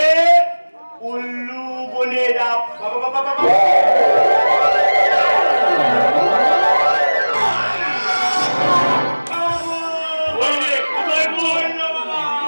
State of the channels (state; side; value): inverted; both; correlation -1.00